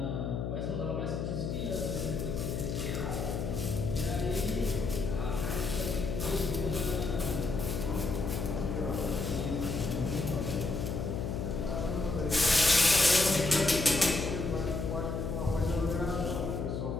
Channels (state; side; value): noise; left; hum, 2 dB below the sound